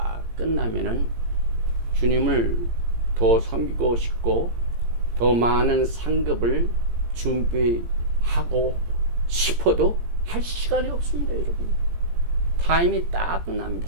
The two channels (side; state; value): left; late; 17 ms